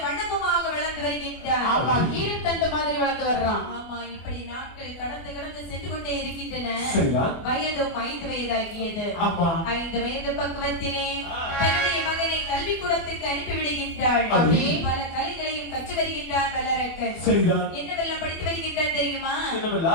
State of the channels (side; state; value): right; late; 24 ms